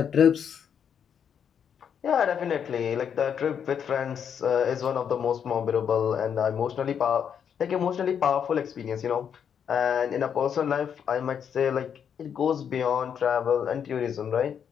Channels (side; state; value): right; quieter; 7.9 dB